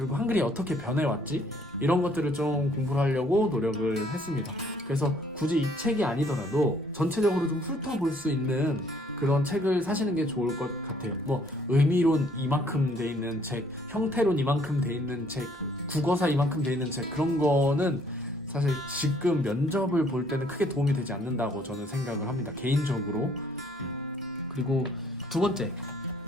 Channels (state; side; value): normal; both; correlation 0.63